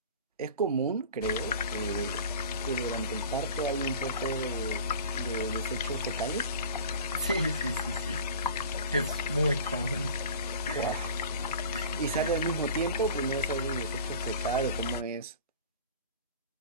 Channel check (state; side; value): inverted; both; correlation -0.41